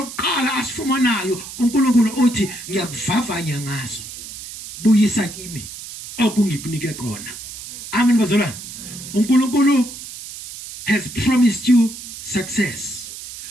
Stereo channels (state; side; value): noise; right; hiss, 12 dB below the sound